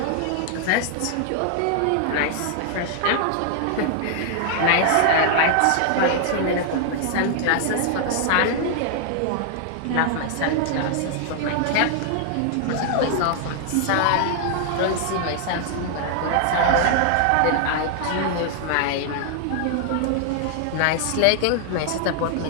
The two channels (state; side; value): different; both; correlation 0.00